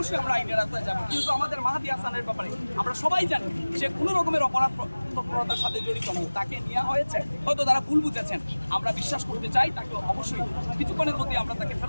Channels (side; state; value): both; inverted; correlation -1.00